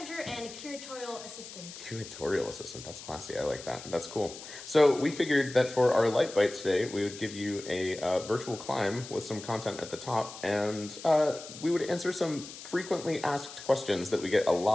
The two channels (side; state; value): left; noise; hiss, 14 dB below the sound